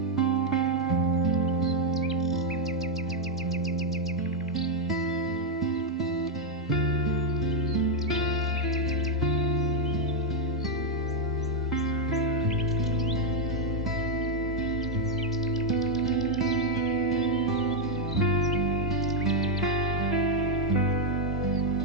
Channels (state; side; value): normal; both; correlation 0.00